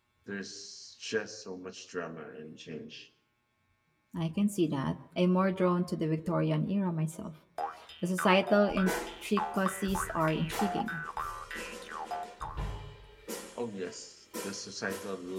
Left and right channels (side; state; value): both; identical; correlation 1.00